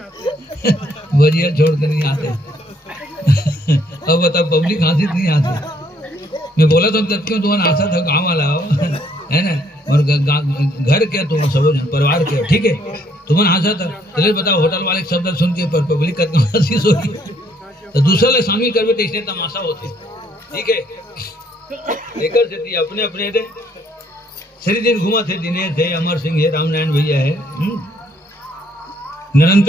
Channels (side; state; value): both; normal; correlation 0.67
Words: के नहीं आते अब बता पब्लिक हंसी नहीं आती मैं बोला तो तब क्यों तुम्हारा आशा था गाँव वाला हो है ना और घर क्या तुम सब परिवार क्या ठीक है तुम्हारा आशा था चलिए बताओ होटल वाले शब्द सुन के पब्लिक का हंसी सोची तो दूसरा ले शामिल करवे तो इसने तमाशा होते ठीक है लेकर से थी अपने अपने थे सरी दिन घुमा थे दिनेश है अमर सिंह है रामनारायण भैया है